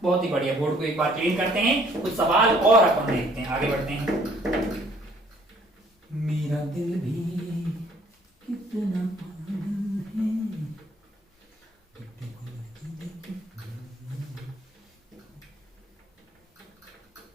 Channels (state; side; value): normal; both; correlation 0.60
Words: बहुत ही बढ़िया। बोर्ड को एक बार क्लीन करते हैं, कुछ सवाल और अपन देखते हैं, आगे बढ़ते हैं। मेरा दिल भी कितना पागल है।